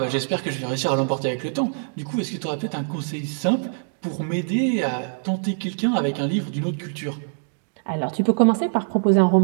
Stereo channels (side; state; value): left; silent; digital silence